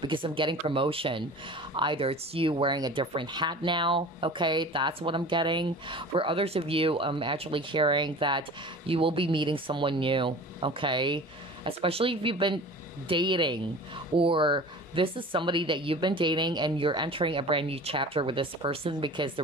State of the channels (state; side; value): normal; both; correlation 0.39